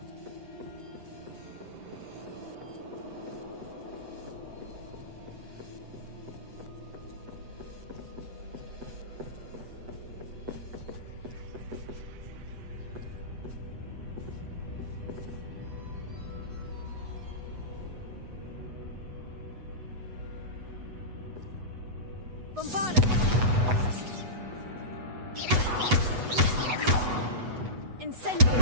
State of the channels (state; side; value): late; left; 8.1 ms